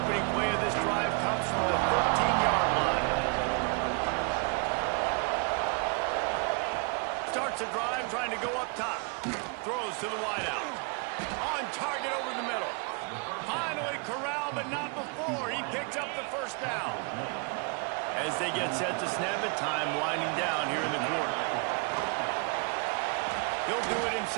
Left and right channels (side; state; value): left; quieter; 35.1 dB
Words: play of this drive comes from the 13-yard line. Starts a drive trying to go up top. Throws to the wideout. On target over the middle. Finally corralled, but not before. He picks up the first down. As they get set to snap it, time winding down here in the quarter. He'll do it